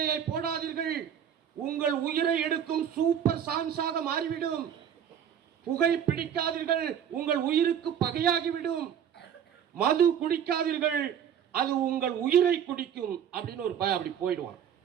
போடாதீர்கள், உங்கள் உயிரை எடுக்கும் சூப்பர் சான்ஸாக மாறிவிடும். புகை பிடிக்காதீர்கள், உங்கள் உயிருக்கு பகையாகிவிடும். மது குடிக்காதீர்கள், அது உங்கள் உயிரை குடிக்கும் அப்படின்னு ஒரு பையன் அப்படி போயிடுவான்.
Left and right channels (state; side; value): quieter; left; 8.9 dB